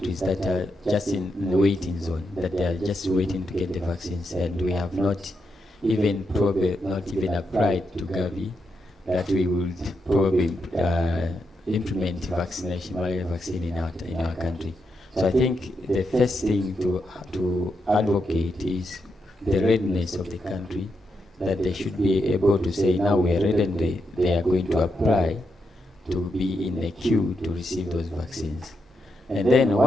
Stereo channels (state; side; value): normal; both; correlation 0.83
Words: that are just in the waiting zone, that they are just waiting to get the vaccines, and we have not even applied to Gavi that we would probably implement malaria vaccine in our country. So I think the first thing to advocate is the readiness of the country, that they should be able to say, now we are ready, and they are going to apply to be in the queue to receive those vaccines. And then